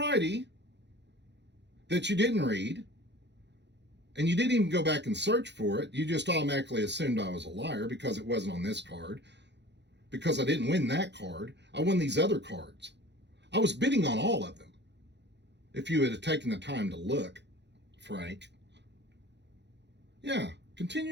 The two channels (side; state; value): left; late; 0.51 ms